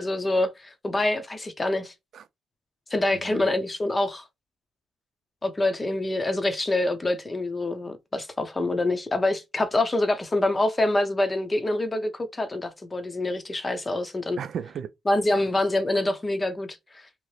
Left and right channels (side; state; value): both; normal; correlation 0.92